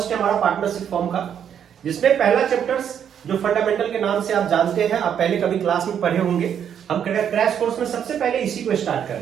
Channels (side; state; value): left; quieter; 8.7 dB